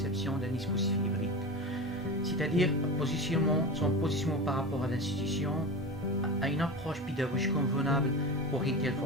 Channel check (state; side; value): normal; both; correlation 0.27